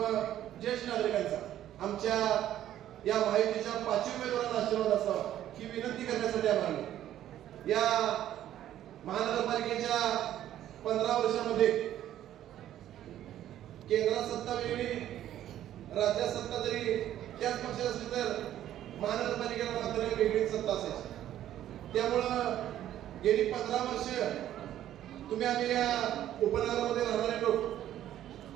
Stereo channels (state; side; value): quieter; left; 12.0 dB